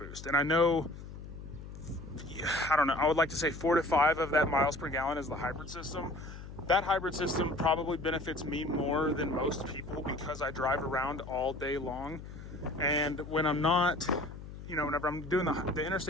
And I know, I don't know, I would like to say 4 to 5 of that miles per gallon is the hybrid system. That hybrid system probably benefits me more than most people because I drive around all day long. And when I'm not, you know, whenever I'm doing the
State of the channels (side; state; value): left; noise; hum, 12 dB below the sound